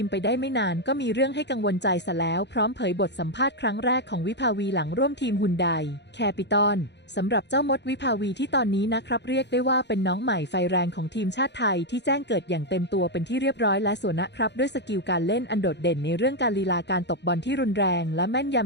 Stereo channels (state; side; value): late; right; 0.50 ms